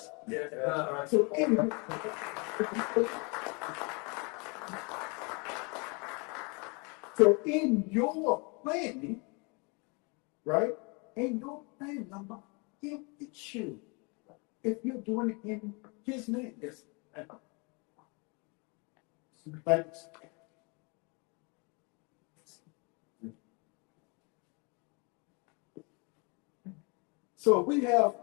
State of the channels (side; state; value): right; quieter; 31.5 dB